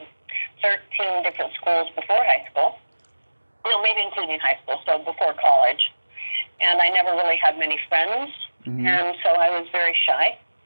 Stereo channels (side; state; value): both; inverted; correlation -1.00